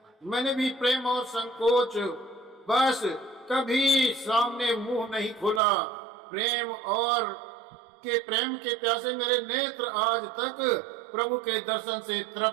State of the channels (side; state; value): left; drops out; at 5.6 s